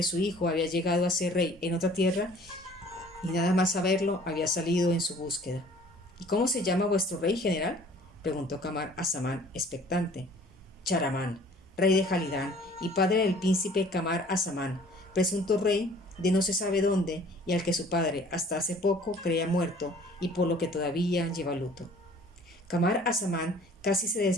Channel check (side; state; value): both; normal; correlation 0.52